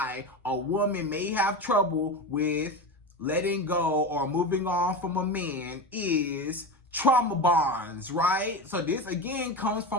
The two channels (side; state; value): both; normal; correlation 0.23